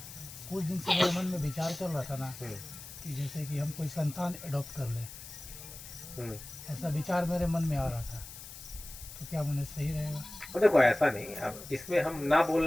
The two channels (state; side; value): noise; left; hiss, 13 dB below the sound